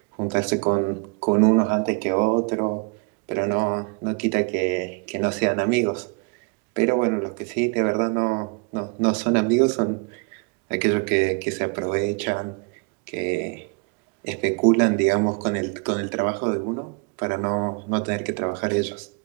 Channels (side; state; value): left; quieter; 32.8 dB